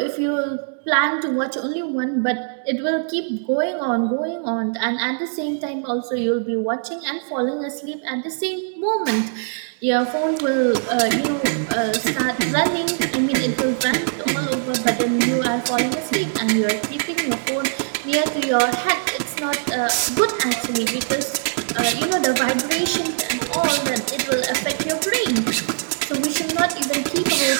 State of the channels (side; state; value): left; silent; digital silence